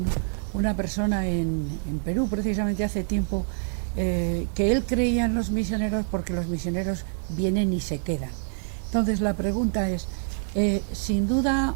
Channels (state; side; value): silent; left; digital silence